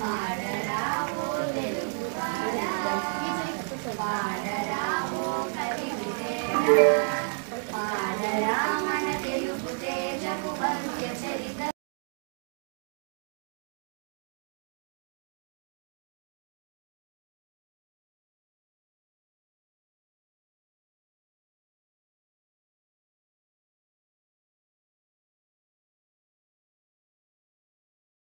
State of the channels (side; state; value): left; silent; 56 dB below the other